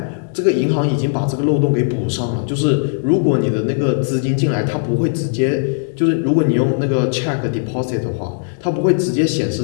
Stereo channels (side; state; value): right; silent; digital silence